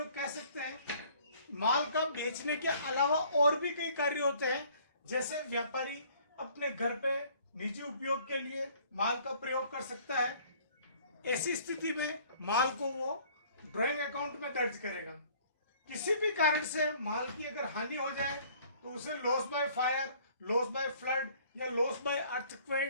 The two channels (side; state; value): both; inverted; correlation -0.56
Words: कह सकते हैं, माल का बेचने के अलावा और भी कई कार्य होते हैं। जैसे व्यापारी अपने घर पे निजी उपयोग के लिए माल का प्रयोग कर सकता है। ऐसी स्थिति में माल को वो ड्राइंग अकाउंट में दर्ज करेगा। किसी भी कारण से माल की अगर हानि हो जाए तो उसे loss by fire, loss by flood या लॉस बाय